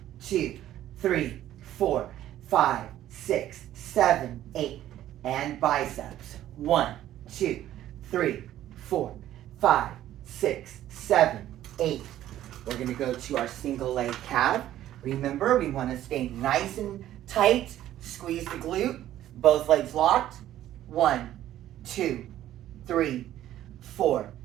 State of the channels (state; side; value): quieter; left; 12.8 dB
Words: 2, 3, 4, 5, 6, 7, 8. And biceps. 1, 2, 3, 4, 5, 6, 7, 8. We're going to go to our single leg calf. Remember, we want to stay nice and tight. Squeeze the glute. Both legs locked. 1, 2, 3, 4,